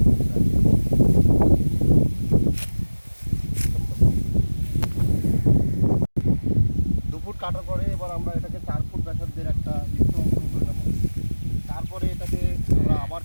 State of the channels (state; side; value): inverted; both; correlation -1.00